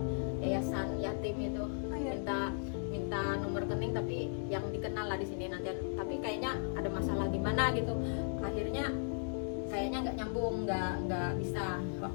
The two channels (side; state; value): right; silent; digital silence